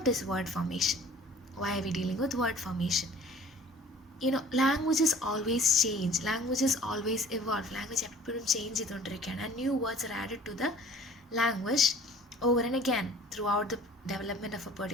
is word formation? Why are we dealing with word formation? Languages always change, languages always evolve, language എപ്പോഴും change ചെയ്തുകൊണ്ടിരിക്കുകയാണ്, and new words are added to the language over and again. Throughout the development of a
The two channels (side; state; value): both; normal; correlation 0.49